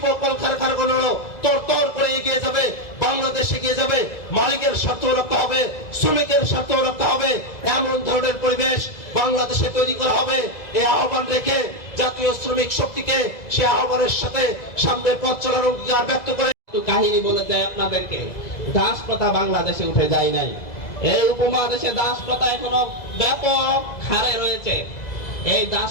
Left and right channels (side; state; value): right; late; 2.0 ms